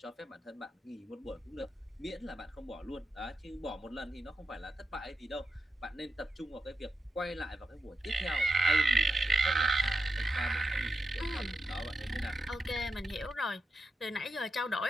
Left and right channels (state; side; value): normal; both; correlation 0.88